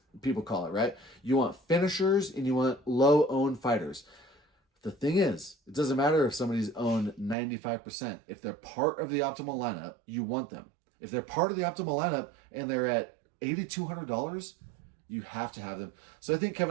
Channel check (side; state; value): left; drops out; at 7.4 s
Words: people call it, right? You want finishers and you want low-owned fighters. The thing is, it doesn't matter if somebody's owned 95%. If they're part of the optimal lineup, you want them. If they're part of the optimal lineup and they're at $8,200, you have to have them. So I think